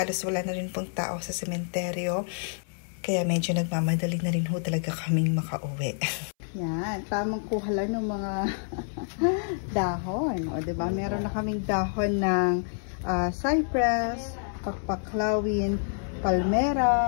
wala na rin pong tao sa sementeryo. Kaya medyo nagmamadali na rin ho talaga kaming makauwi. Yan. Tamang kuha lang ng mga dahon. O, diba? Meron na kaming dahon ng cypress, pakpaklawin,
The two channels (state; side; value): silent; right; 59 dB below the other